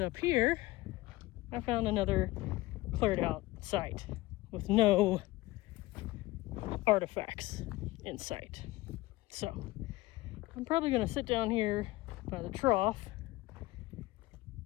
here, I found another cleared out site with no artifacts in sight. So, I'm probably going to sit down here by the trough,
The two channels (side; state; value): right; quieter; 19.7 dB